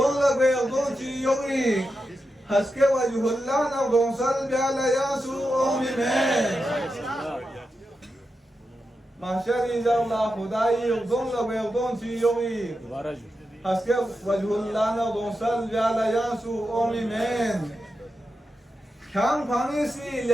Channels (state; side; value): normal; both; correlation 0.89